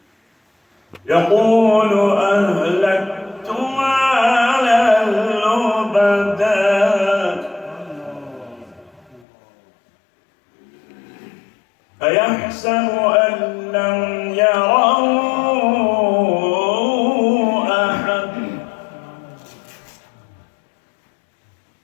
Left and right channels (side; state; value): right; drops out; at 9.2 s